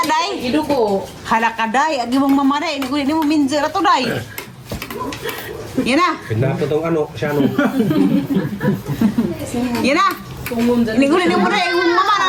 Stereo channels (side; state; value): both; identical; correlation 1.00